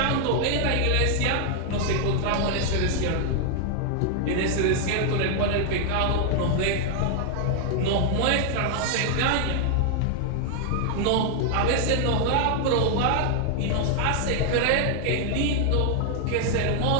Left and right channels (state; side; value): different; both; correlation 0.00